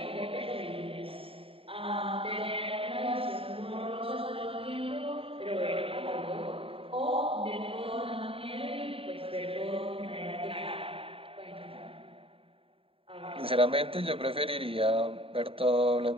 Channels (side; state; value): left; late; 0.27 ms